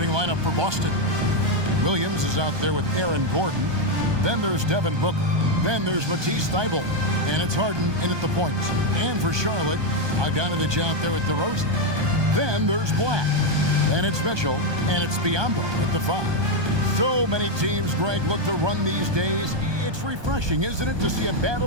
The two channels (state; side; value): late; left; 1.2 ms